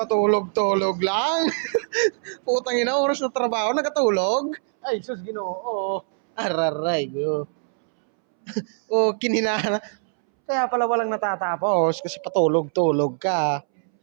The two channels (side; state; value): left; silent; 63 dB below the other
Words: lang. Putang ina, oras na trabaho, nagatulog. Ay, sus Ginoo. Araray, go. Oh, kinina. Kaya pala walang natatapos kasi patulog-tulog ka.